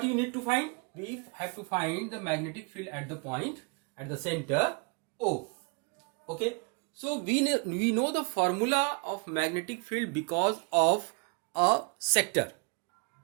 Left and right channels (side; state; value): left; quieter; 33.0 dB